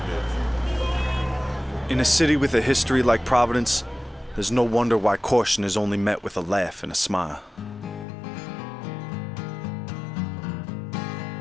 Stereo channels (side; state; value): right; drops out; at 8.1 s